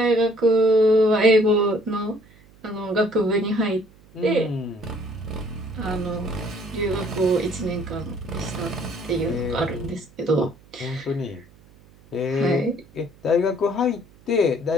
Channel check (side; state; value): right; noise; hum, 27 dB below the sound